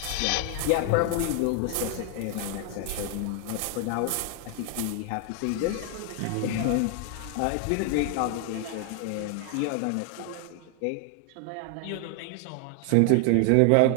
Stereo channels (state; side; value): different; both; correlation 0.00